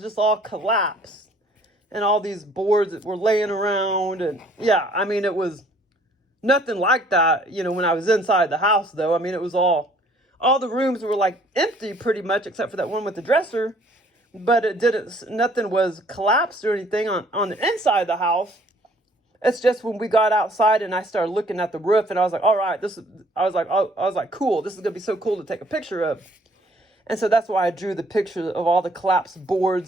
just all collapsed. And all these boards that were laying around. And yeah, I mean, it was nothing like that, when I was inside the house, though. I mean, it was all the rooms were like empty pretty much, except for that one with the dresser. But nothing was collapsed or anything on the inside of the house. It's just when we got outside and I started looking at the roof, and I was like, all right, I was like, cool, this is going to be so cool to take a picture of. And so that's why I drew the picture of all the collapsed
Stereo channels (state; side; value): normal; both; correlation 0.59